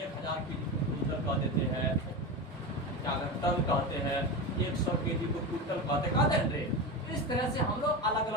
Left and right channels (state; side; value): normal; both; correlation 0.21